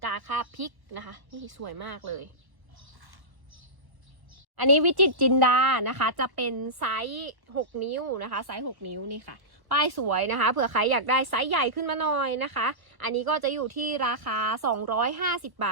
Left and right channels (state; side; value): late; left; 1.1 ms